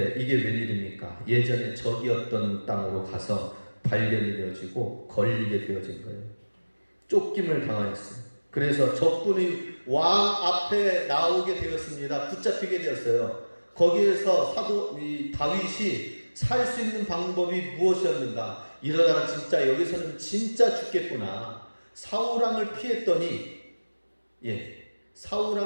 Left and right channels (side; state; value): both; inverted; correlation -1.00